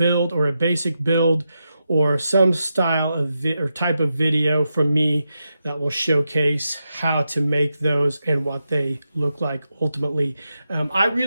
or a basic build, or some style of or type of video from me that will showcase how to make those and what they look like ultimately. I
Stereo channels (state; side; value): inverted; both; correlation -0.87